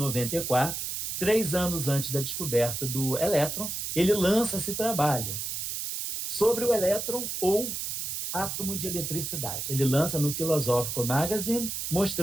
3 anos antes da descoberta do elétron, ele lança esse trabalho sobre o elétron ou átomo de eletricidade. Ele lança no Philosophical Magazine,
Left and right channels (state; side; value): noise; right; hiss, 4 dB below the sound